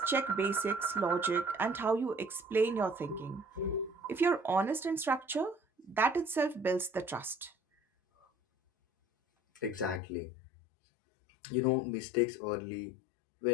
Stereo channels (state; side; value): drops out; right; at 10.0 s